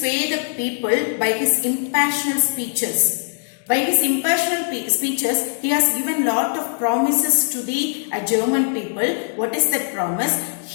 the people by his impassioned speeches. By his impassioned speeches, he has given lot of promises to the German people. What is that promise?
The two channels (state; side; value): silent; right; digital silence